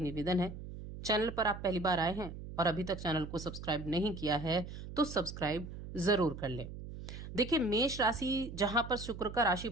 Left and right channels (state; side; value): noise; right; hum, 10 dB below the sound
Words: निवेदन है, चैनल पर आप पहली बार आए हैं और अभी तक चैनल को सब्सक्राइब नहीं किया है तो सब्सक्राइब जरूर कर लें। देखिए, मेष राशि जहां पर शुक्र का राशि